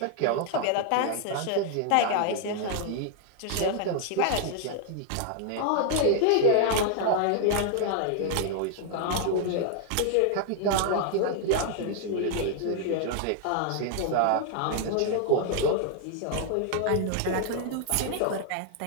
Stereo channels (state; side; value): different; both; correlation 0.00